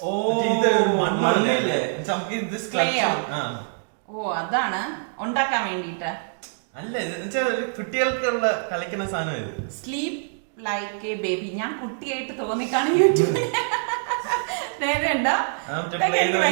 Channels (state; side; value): silent; left; digital silence